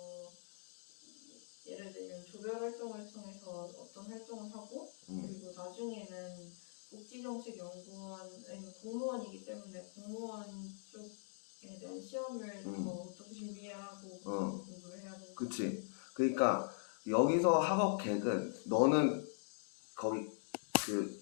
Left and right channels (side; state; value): right; silent; digital silence